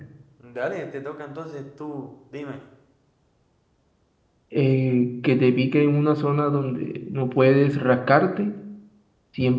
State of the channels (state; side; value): identical; both; correlation 1.00